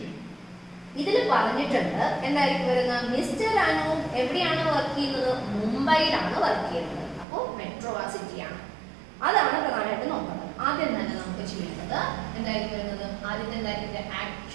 ഇതിൽ പറഞ്ഞിട്ടുണ്ട് എന്തായിരിക്കും വരുന്നത്, മിസ്റ്റർ അനു എവിടെയാണ് വർക്ക് ചെയ്യുന്നത്, മുംബൈയിലാണ് വർക്ക് ചെയ്യുന്നത്. അപ്പോൾ മെട്രോ സിറ്റിയാണ്. അതാണ് പ്രധാനമായിട്ട് നോക്കുന്നത്. ആദ്യം തന്നെ നമുക്ക് ചെയ്യേണ്ടത് എന്തായിരിക്കും വരുന്നത്, ആദ്യത്തെ എന്തായിരിക്കും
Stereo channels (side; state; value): left; drops out; at 7.2 s